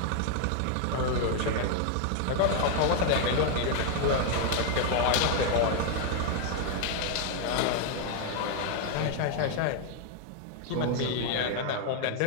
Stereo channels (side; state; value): both; different; correlation 0.00